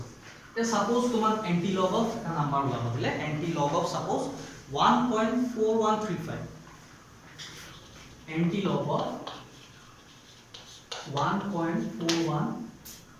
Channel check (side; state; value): both; identical; correlation 1.00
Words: তে সাপোজ তোমাক anti log of এটা নাম্বাৰ উলাব দিলে anti log of suppose 1.4135 anti log of